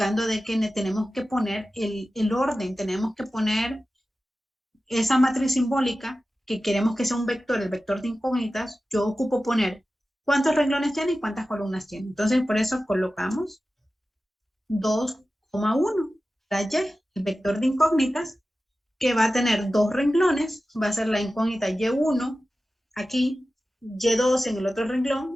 de que tenemos que poner el orden, tenemos que poner esa matriz simbólica que queremos que sea un vector, el vector de incógnitas. Yo ocupo poner cuántos renglones tiene y cuántas columnas tiene. Entonces por eso colocamos 2,1 la Y, el vector de incógnitas, que va a tener 2 renglones, va a ser la incógnita Y1 aquí, Y2 en el otro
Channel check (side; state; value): both; normal; correlation 0.94